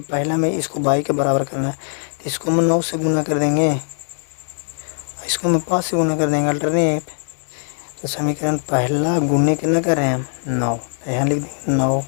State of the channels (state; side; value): silent; right; 58 dB below the other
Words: पहला में इसको बाई के बराबर करना है, तो इसको हम 9 से गुना कर देंगे, इसको हम 5 से गुना कर देंगे, अल्टरनेट। तो समीकरण पहला गुने कितना कर रहे हैं हम, 9, तो यहाँ लिख देंगे 9।